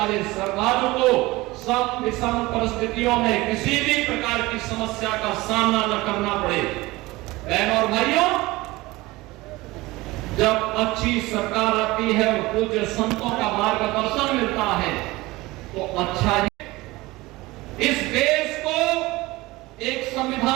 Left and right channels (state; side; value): quieter; left; 20.5 dB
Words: श्रद्धालु को सम विषम परिस्थितियों में किसी भी प्रकार की समस्या का सामना न करना पड़े। बहनों और भाइयों, जब अच्छी सरकार आती है और पूज्य संतों का मार्गदर्शन मिलता है तो अच्छा ही। इस देश को एक